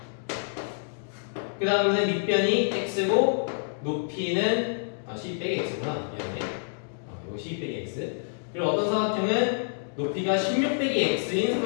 그 다음에 밑변이 x고 높이는 12 빼기 x구나. 미안해. 이거 12 빼기 x. 그리고 어떤 사각형은 높이가 16 빼기 x인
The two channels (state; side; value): silent; right; digital silence